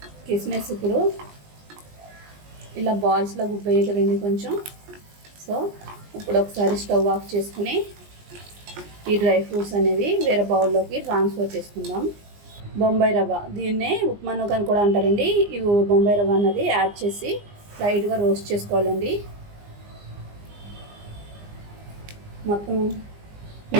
కిస్మిస్ ఇప్పుడు ఇలా బాల్స్లో గుబ్బయ్యాయి కదండి కొంచెం. సో ఇప్పుడు ఒకసారి స్టవ్ ఆఫ్ చేసుకుని ఈ డ్రై ఫ్రూట్స్ అనేవి వేరే బౌల్లోకి ట్రాన్స్ఫర్ చేసుకుందాం. బొంబాయి రవ్వ, దీన్నే ఉప్మా నూక అని కూడా అంటారండి. ఈ బొంబాయి రవ్వ అన్నది యాడ్ చేసి లైట్గా రోస్ట్ చేసుకోవాలండి. మొత్తం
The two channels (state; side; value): late; left; 20 ms